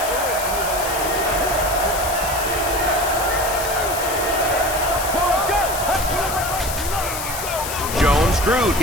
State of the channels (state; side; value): noise; left; hiss, 7 dB below the sound